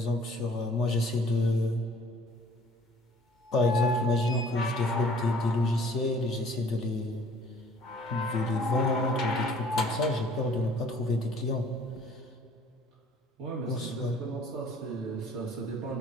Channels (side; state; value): both; normal; correlation 0.54